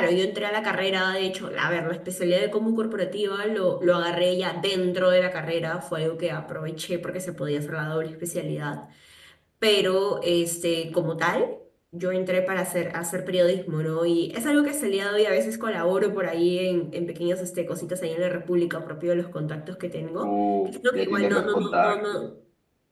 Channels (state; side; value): identical; both; correlation 1.00